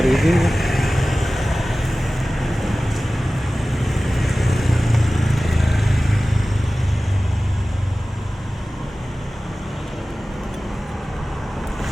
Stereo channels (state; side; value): normal; both; correlation 0.97